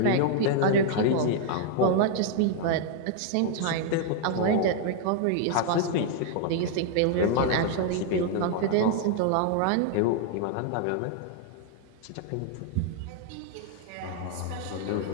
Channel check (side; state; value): both; different; correlation 0.00